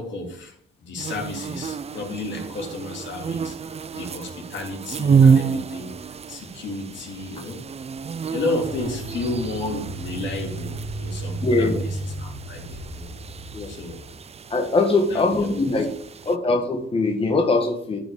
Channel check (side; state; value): both; normal; correlation 0.61